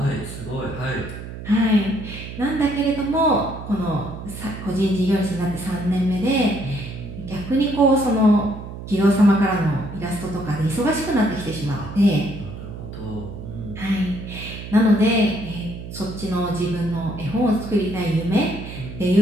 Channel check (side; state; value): right; noise; hum, 10 dB below the sound